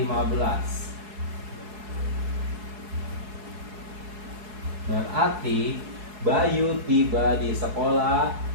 Berarti Bayu tiba di sekolah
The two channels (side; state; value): left; late; 4.7 ms